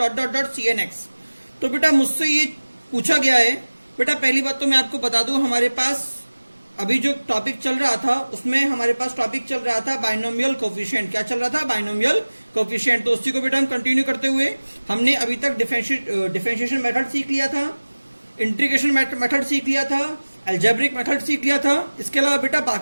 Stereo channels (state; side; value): inverted; both; correlation -1.00